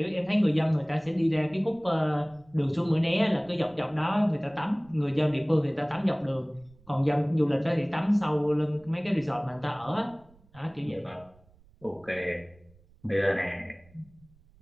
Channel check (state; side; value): noise; right; rumble, 28 dB below the sound